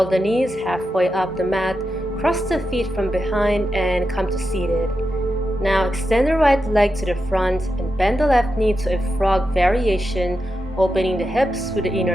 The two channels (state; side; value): normal; both; correlation 0.88